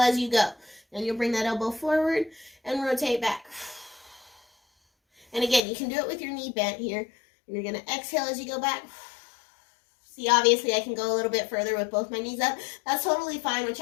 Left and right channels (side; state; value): right; drops out; at 5.6 s